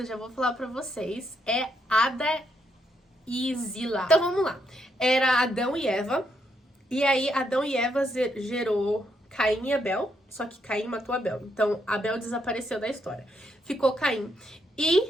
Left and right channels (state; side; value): normal; both; correlation 0.77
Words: já vou falar pra vocês, é Ada e Zila. Então vamos lá. Era Adão e Eva. E aí, Adão e Eva gerou Caim e Abel, só que Caim matou Abel. Então, Abel desapareceu da história. Ficou Caim.